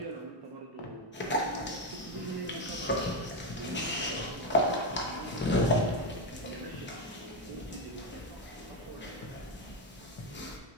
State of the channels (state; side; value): normal; both; correlation 0.09